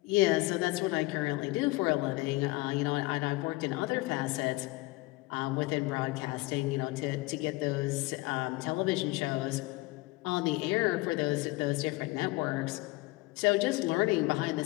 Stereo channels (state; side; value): quieter; right; 21.3 dB